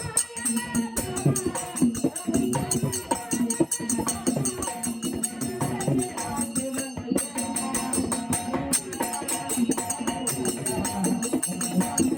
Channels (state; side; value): identical; both; correlation 1.00